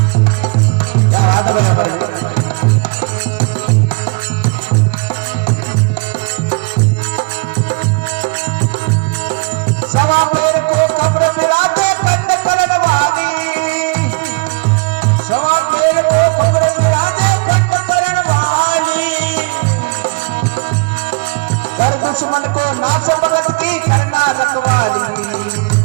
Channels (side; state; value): left; quieter; 29.7 dB